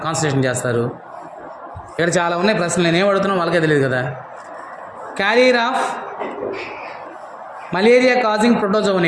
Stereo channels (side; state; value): both; identical; correlation 1.00